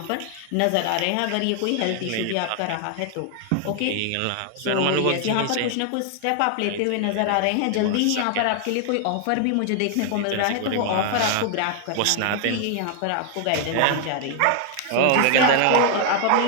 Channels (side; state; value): both; different; correlation 0.00